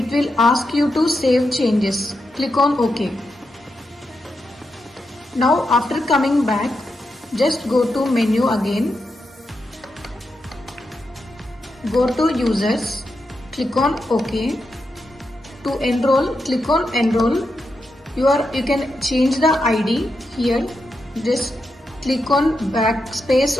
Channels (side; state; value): both; normal; correlation 0.86